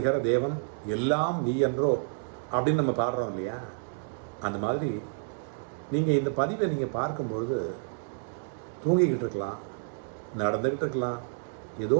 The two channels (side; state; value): left; silent; digital silence